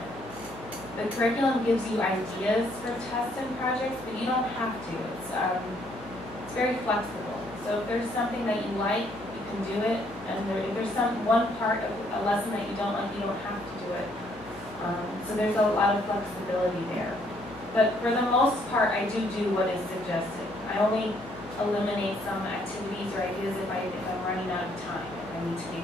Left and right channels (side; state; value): left; noise; hum, 19 dB below the sound